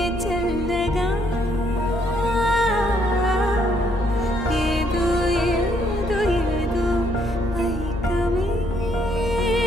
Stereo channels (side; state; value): left; noise; hum, 9 dB below the sound